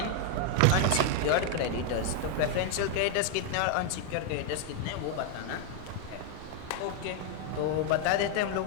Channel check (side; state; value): both; different; correlation 0.00